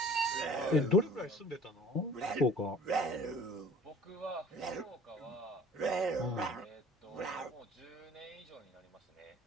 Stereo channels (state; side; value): normal; both; correlation 0.49